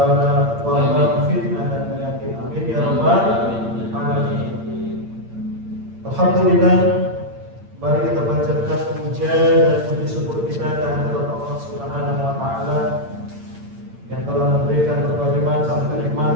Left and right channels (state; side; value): late; left; 8.8 ms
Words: wabah, fitnah dan penyakit, amin ya rabbal alamin. Alhamdulillah. Mari kita panjatkan puja dan puji syukur kita kehadirat Allah Subhanahu wa taala yang telah memberikan berbagai macam